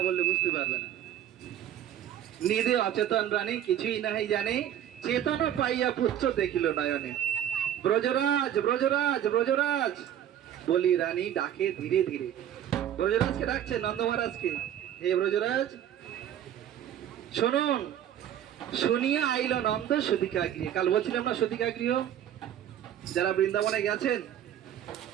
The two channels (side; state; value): left; quieter; 10.6 dB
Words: বললে বুঝতে পারবে না। নিদে অচেতন রানী কিছুই নাহি জানে, চেতনা পাইয়া পুত্র দেখিল নয়নে। ব্রজরাজ ব্রজরাজ ব্রজরাজ বলি রানী ডাকে ধীরে ধীরে। ব্রজরাজকে ডাকছে, নন্দ মহারাজকে, হে ব্রজরাজ শুনুন। শুনিয়া আইল নন্দ সুতিকা গৃহে। কাল বলছিলাম না সুতিকা গৃহ, যারা বৃন্দাবনে গেছেন